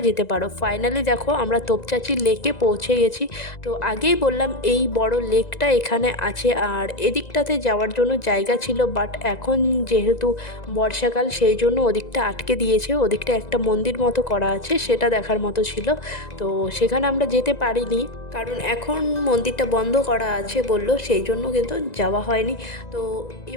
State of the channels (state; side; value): late; right; 1.9 ms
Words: যেতে পারো। ফাইনালি দেখো আমরা তোপচাঁচি লেকে পৌঁছে গেছি। তো আগেই বললাম এই বড় লেকটা এখানে আছে, আর এদিকটাতে যাওয়ার জন্য জায়গা ছিল, বাট এখন যেহেতু বর্ষাকাল সেই জন্য ওদিকটা আটকে দিয়েছে। ওদিকটা একটা মন্দির মতো করা আছে, সেটা দেখার মতো ছিল, তো সেখানে আমরা যেতে পারিনি, কারণ এখন মন্দিরটা বন্ধ করা আছে বললো, সেই জন্য কিন্তু যাওয়া হয়নি। তো